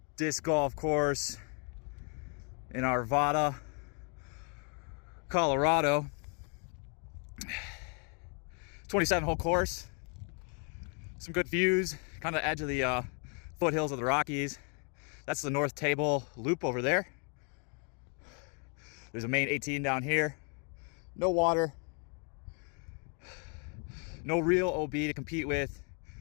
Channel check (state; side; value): quieter; right; 37.9 dB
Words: Disc Golf Course in Arvada, Colorado. 27-hole course. Some good views, kind of edge of the foothills of the Rockies. That's the North Table Loop over there. There's a main 18 down here. No water. No real OB to compete with.